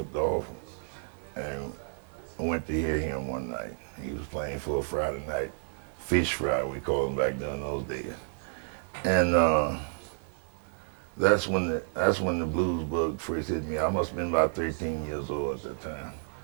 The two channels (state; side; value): silent; left; digital silence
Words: off and I went to hear him one night. He was playing for a Friday night fish fry, we called them back during those days. And that's when the blues bug first hit me. I must have been about 13 years old at that time.